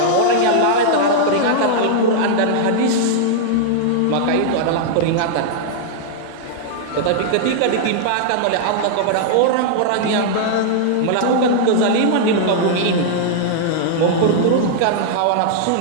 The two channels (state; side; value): different; both; correlation -0.01